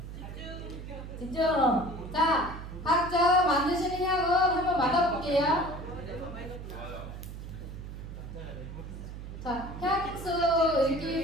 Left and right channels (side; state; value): right; noise; hum, 10 dB below the sound